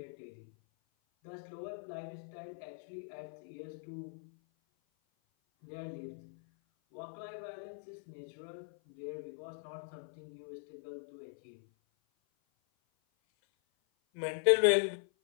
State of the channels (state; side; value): silent; right; 51 dB below the other